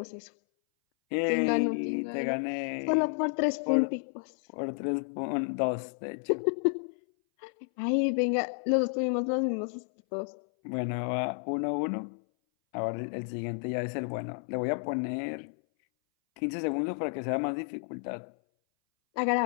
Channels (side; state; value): right; silent; 57 dB below the other